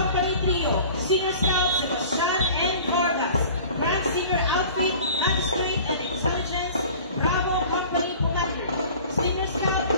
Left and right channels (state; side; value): inverted; both; correlation -0.44